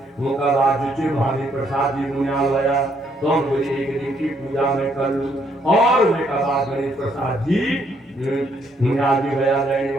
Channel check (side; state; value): both; normal; correlation 0.71